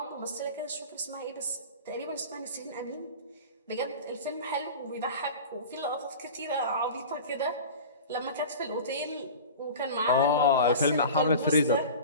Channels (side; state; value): both; inverted; correlation -0.35